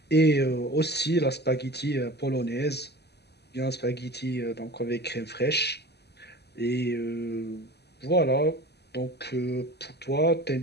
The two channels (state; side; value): late; right; 0.48 ms